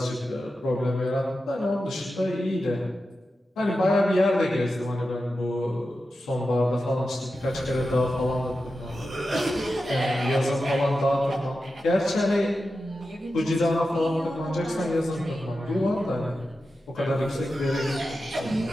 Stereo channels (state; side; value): normal; both; correlation 0.91